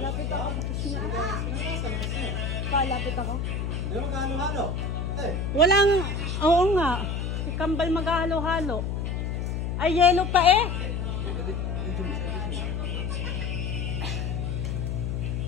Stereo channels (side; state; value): left; noise; hum, 2 dB below the sound